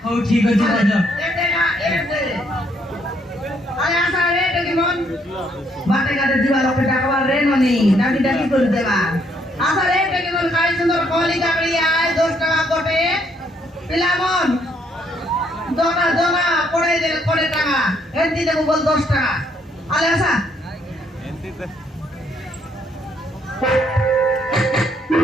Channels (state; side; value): normal; both; correlation 0.70